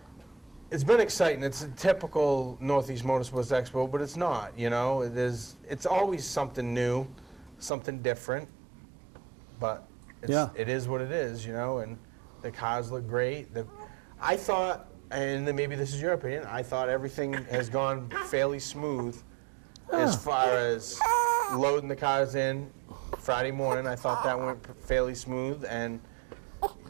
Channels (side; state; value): left; drops out; at 7.7 s